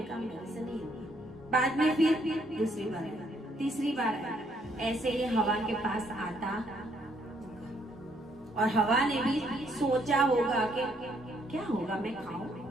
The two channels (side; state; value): both; normal; correlation 0.70